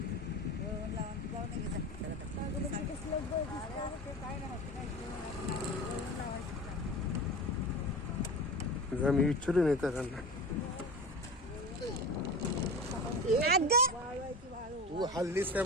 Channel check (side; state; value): both; normal; correlation 0.31